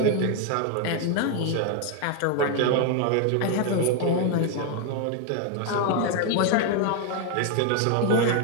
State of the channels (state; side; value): different; both; correlation 0.01